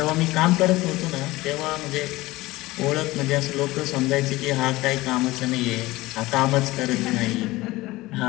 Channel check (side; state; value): right; quieter; 19.3 dB